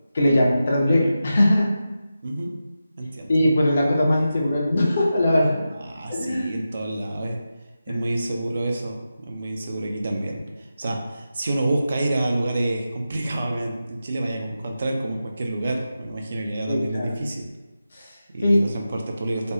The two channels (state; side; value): inverted; both; correlation -0.91